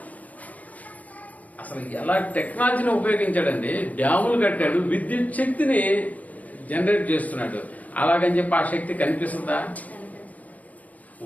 అసలు ఎలా టెక్నాలజీని ఉపయోగించాడండి, డ్యాములు కట్టాడు, విద్యుత్ శక్తిని జనరేట్ చేస్తున్నాడు. అలాగని చెప్పి ఆ శక్తి కనిపిస్తుందా?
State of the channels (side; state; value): right; late; 0.072 ms